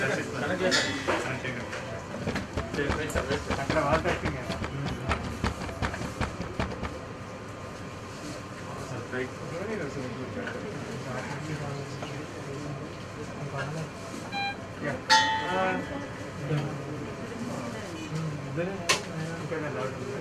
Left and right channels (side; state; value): both; identical; correlation 1.00